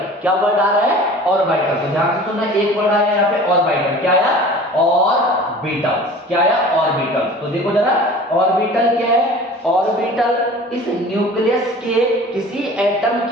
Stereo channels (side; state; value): both; normal; correlation 0.42